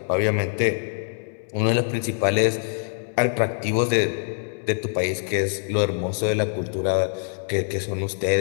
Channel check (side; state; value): right; silent; 62 dB below the other